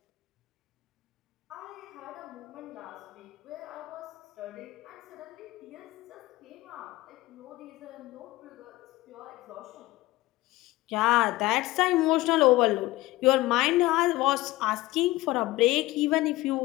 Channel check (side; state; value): right; quieter; 18.5 dB